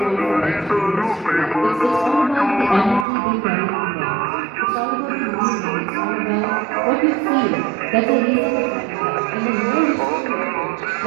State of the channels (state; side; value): drops out; left; at 3.1 s